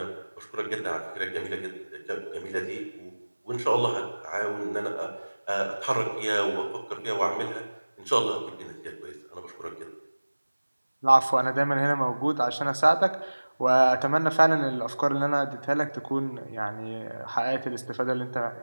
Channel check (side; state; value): both; inverted; correlation -1.00